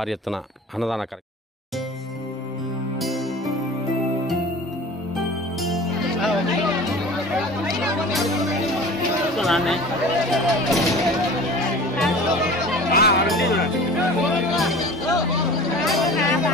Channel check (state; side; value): normal; both; correlation 0.40